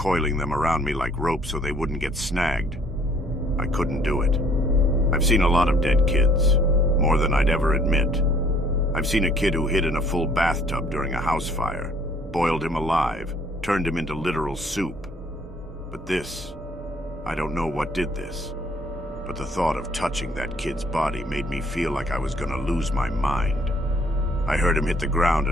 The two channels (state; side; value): normal; both; correlation 0.61